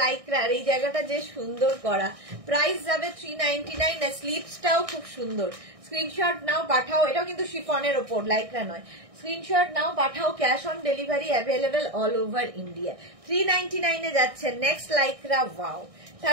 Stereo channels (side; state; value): left; late; 1.6 ms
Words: লাইক্রার, এই জায়গাটা যে সুন্দর করা। প্রাইস যাবে 399। স্লিভসটাও খুব সুন্দর, স্ক্রিনশট নাও পাঠাও, এটাও কিন্তু শিফনের ওপর, লাইকরা নয়। স্ক্রিনশট নাও পাঠাও, cash on delivery available all over India. 399 এ যাচ্ছে next লাইকরা। Wow,